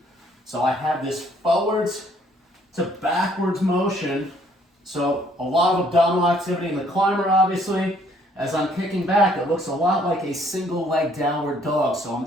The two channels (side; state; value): both; normal; correlation 0.63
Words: So I have this forwards to backwards motion. So a lot of abdominal activity in the climber, obviously. As I'm kicking back, it looks a lot like a single leg downward dog. So I'm